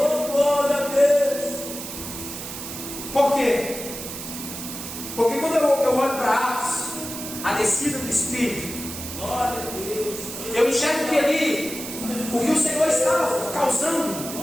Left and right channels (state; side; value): noise; right; hiss, 9 dB below the sound